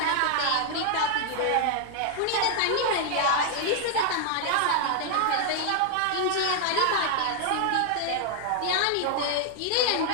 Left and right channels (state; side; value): different; both; correlation 0.00